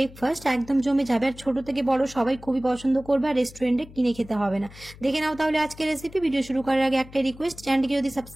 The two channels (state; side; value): noise; left; hum, 19 dB below the sound